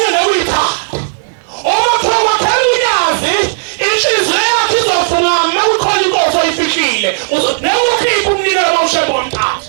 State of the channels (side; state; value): left; silent; digital silence